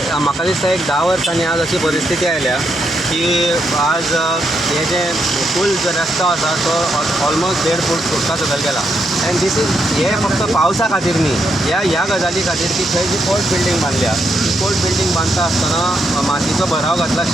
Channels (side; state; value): both; normal; correlation 0.80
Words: म्हाका दिसता एक 10 वर्सांनी आज अशी परिस्थिती आयल्या की आज हे जे पूल जो रस्तो आसा तो ऑलमोस्ट 1.5 फूट सुटका सकयल गेला. एंड दीस इज हे फक्त पावसा खातीर न्ही, ह्या गजाली खातीर की थंय जी कोर्ट बिल्डींग बांदल्या, कोर्ट बिल्डींग बांदता आसतना मातयेचो भराव घातला